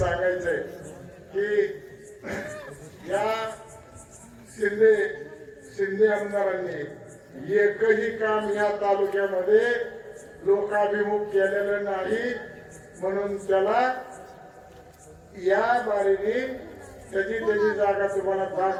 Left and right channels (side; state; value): both; identical; correlation 1.00